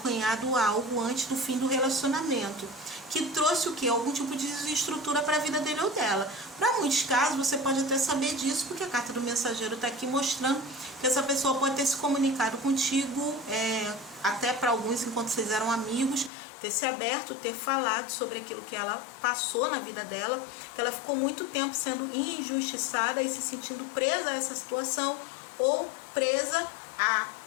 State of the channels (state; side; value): drops out; right; at 16.3 s